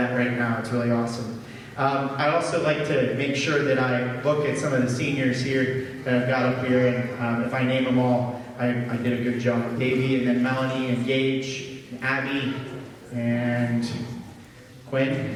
right now. It's really awesome. I also like to make sure that I look at some of the seniors here that I've got up here, and if I name them all, I did a good job. Davey, and then Melanie, and Gage, and Abby, and Quinn.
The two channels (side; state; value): both; identical; correlation 1.00